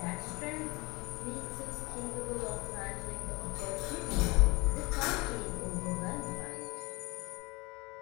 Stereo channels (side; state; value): right; quieter; 24.8 dB